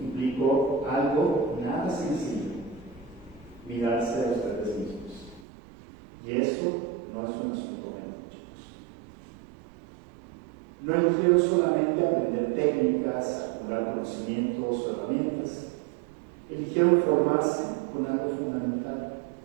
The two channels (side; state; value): left; drops out; at 5.5 s